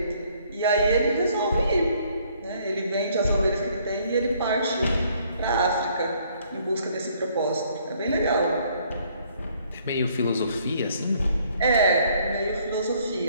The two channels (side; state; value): both; inverted; correlation -0.64